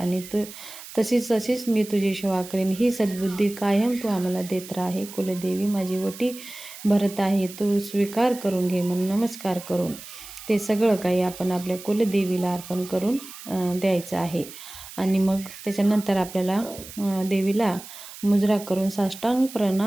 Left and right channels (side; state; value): right; noise; hiss, 15 dB below the sound